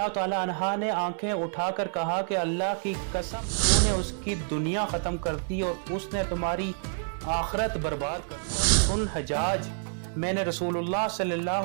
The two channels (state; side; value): silent; left; digital silence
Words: ताला अन्हा ने आंखें उठाकर कहा कि अल्लाह की कसम, तूने उसकी दुनिया ख़त्म कर दी और उसने तुम्हारी आखिरत बर्बाद कर दी। सुन हजाज, मैंने रसूलुल्लाह